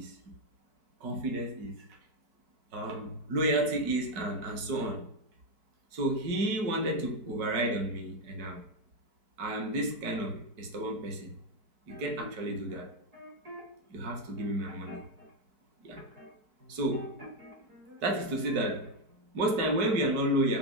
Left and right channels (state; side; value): late; left; 4.6 ms